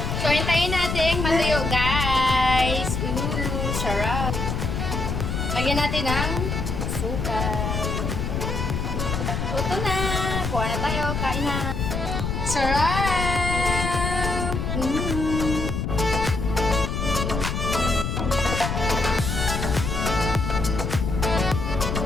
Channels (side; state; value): left; noise; rumble, 2 dB below the sound